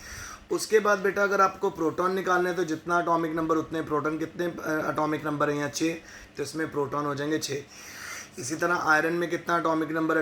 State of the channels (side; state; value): both; identical; correlation 1.00